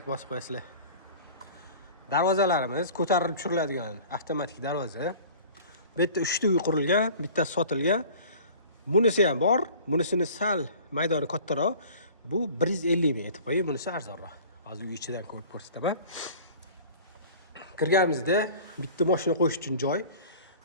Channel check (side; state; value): both; inverted; correlation -0.44